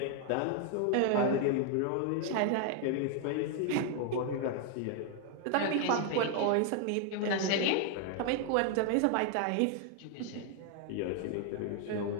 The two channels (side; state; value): both; different; correlation 0.00